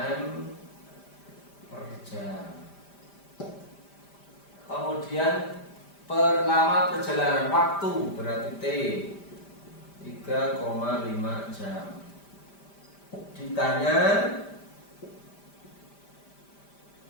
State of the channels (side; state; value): right; late; 5.0 ms